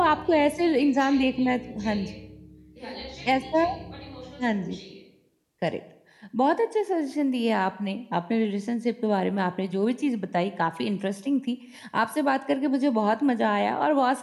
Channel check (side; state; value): both; identical; correlation 1.00